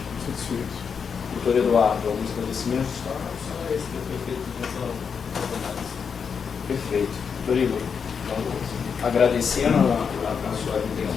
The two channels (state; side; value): quieter; right; 6.4 dB